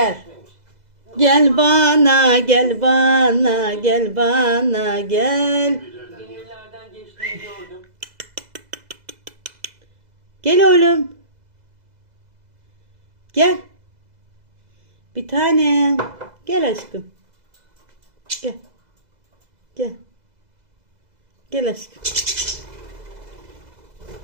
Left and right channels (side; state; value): left; late; 2.0 ms